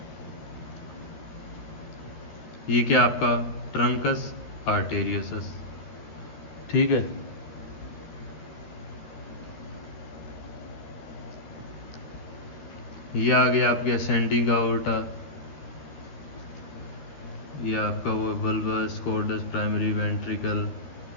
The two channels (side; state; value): right; late; 13 ms